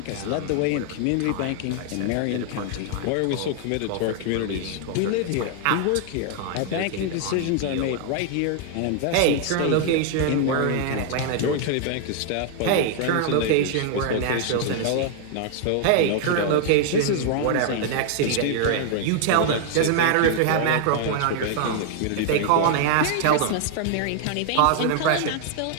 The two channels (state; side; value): different; both; correlation 0.00